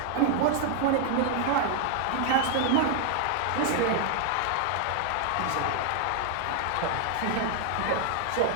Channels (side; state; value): both; different; correlation 0.00